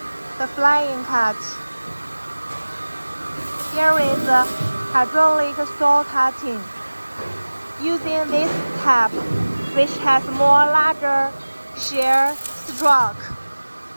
The flying cut. Here is hydraulic saw cutting. Using this tab, which has more larger shear stroke.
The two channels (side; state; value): both; inverted; correlation -1.00